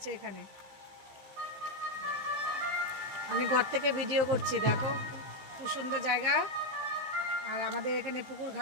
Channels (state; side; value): late; left; 15 ms